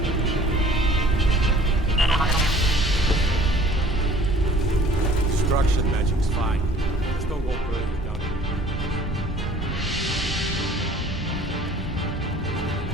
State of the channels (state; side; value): normal; both; correlation 0.51